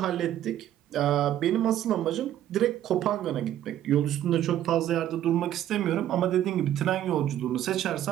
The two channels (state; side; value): quieter; left; 11.9 dB